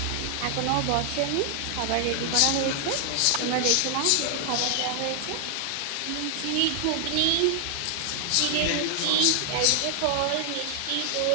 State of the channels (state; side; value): different; both; correlation 0.00